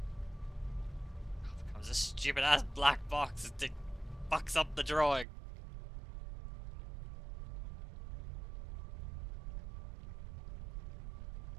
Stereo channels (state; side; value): drops out; left; at 5.2 s